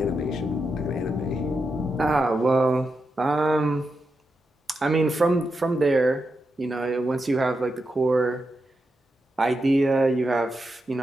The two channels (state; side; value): normal; both; correlation 0.87